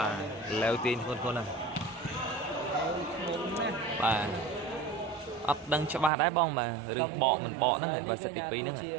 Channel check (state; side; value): drops out; left; at 6.1 s